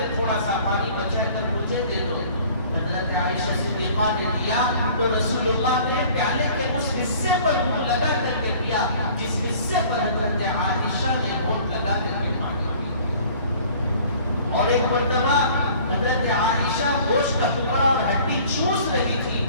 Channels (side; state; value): both; inverted; correlation -0.50